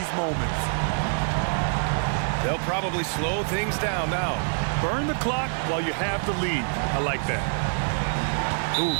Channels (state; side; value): silent; left; 61 dB below the other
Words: moments. They'll probably slow things down now. Burn the clock while you have the lead. I like that. Ooh,